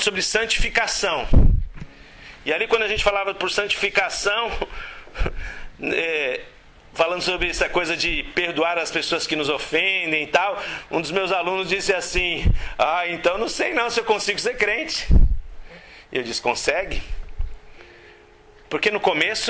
sobre santificação. E ali quando a gente falava por santificação, falando sobre essa coisa de perdoar as pessoas que nos ofendem e tal, um dos meus alunos disse assim, então não sei não se eu consigo ser crente. E eu disse, consegue? Porque no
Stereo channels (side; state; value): both; identical; correlation 1.00